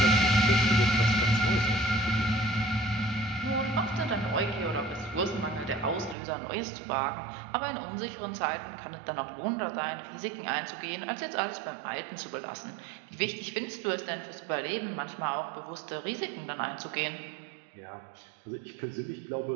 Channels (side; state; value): left; drops out; at 6.2 s